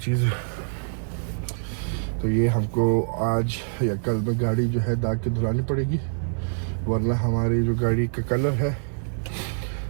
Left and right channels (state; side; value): silent; left; digital silence